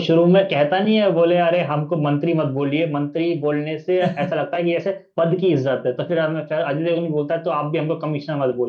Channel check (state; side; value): identical; both; correlation 1.00